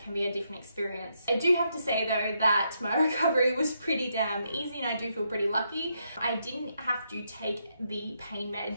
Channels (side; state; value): both; inverted; correlation -0.79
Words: be a different experience. I do have to say though that my recovery was pretty damn easy, and I do feel pretty lucky. I didn't have to take the pain